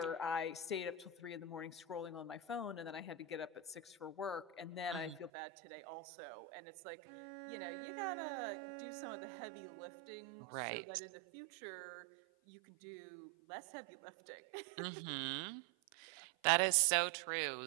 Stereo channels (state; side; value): drops out; left; at 5.3 s